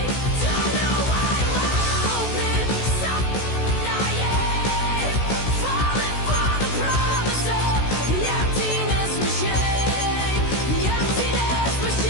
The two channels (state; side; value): late; right; 16 ms